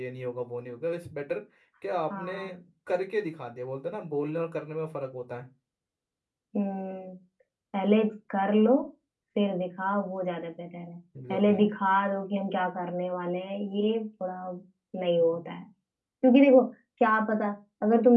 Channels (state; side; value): identical; both; correlation 1.00